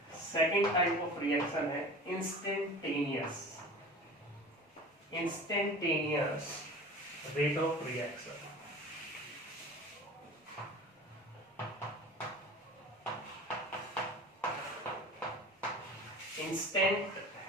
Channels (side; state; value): both; normal; correlation 0.38